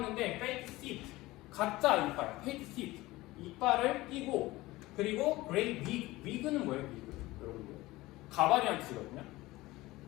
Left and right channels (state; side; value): quieter; right; 19.1 dB